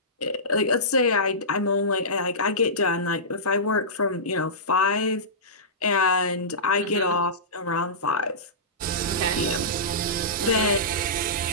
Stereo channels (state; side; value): normal; both; correlation -0.19